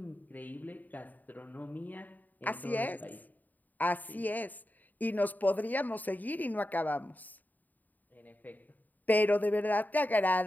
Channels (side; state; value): right; late; 0.084 ms